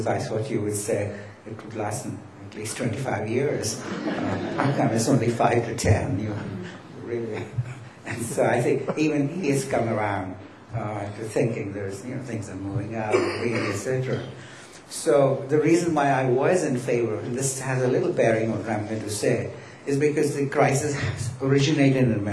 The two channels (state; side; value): identical; both; correlation 1.00